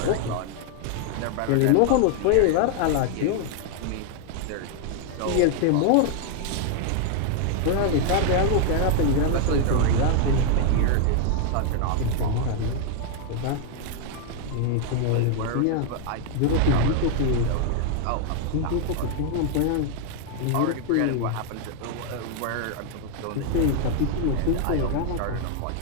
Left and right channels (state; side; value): different; both; correlation 0.00